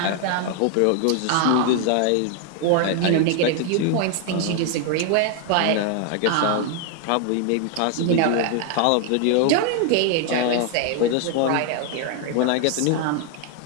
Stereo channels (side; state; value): both; different; correlation 0.00